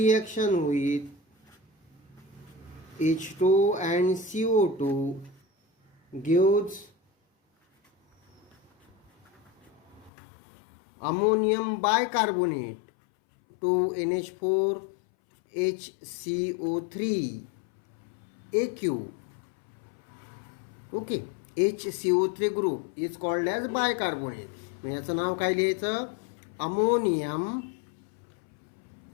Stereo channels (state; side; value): drops out; right; at 10.1 s